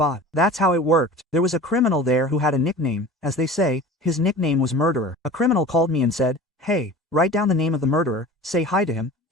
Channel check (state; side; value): normal; both; correlation 0.38